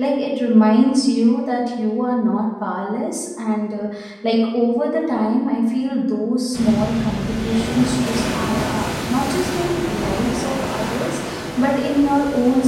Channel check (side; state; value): both; identical; correlation 1.00